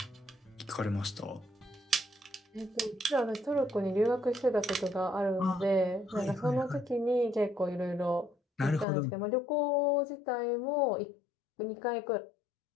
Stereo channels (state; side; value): drops out; right; at 8.8 s